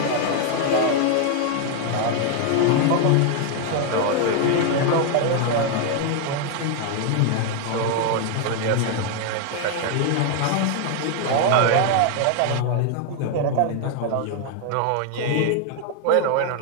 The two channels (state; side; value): different; both; correlation 0.00